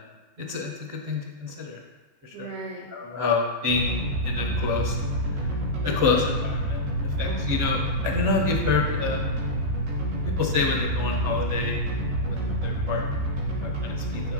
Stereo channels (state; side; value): late; left; 14 ms